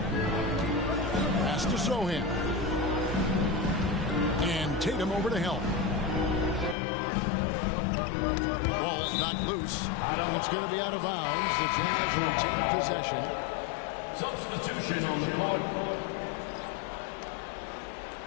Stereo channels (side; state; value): right; drops out; at 6.8 s